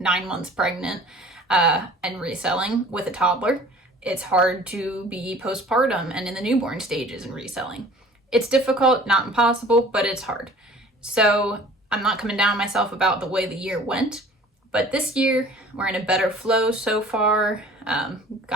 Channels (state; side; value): normal; both; correlation 0.47